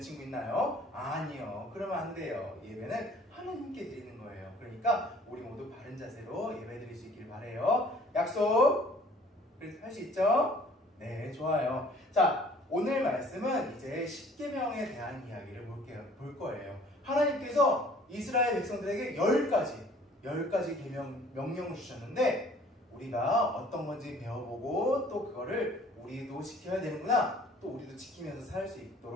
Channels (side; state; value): both; normal; correlation 0.54